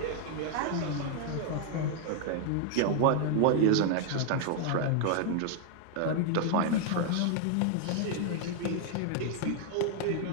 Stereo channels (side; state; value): both; different; correlation 0.00